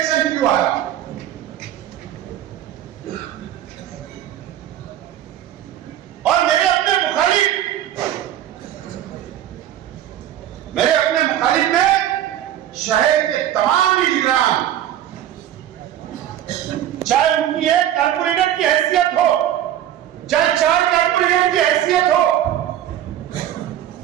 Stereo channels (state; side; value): quieter; left; 11.6 dB